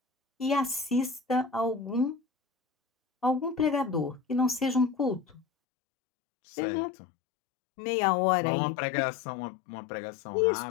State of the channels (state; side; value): drops out; right; at 5.5 s